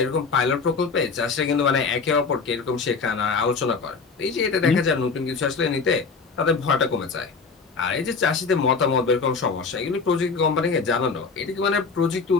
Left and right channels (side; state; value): right; quieter; 4.8 dB